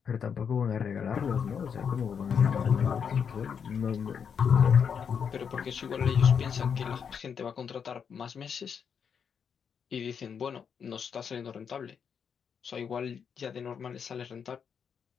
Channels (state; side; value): quieter; right; 7.0 dB